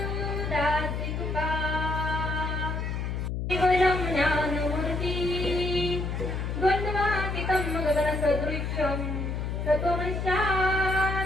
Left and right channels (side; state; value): left; noise; hum, 2 dB below the sound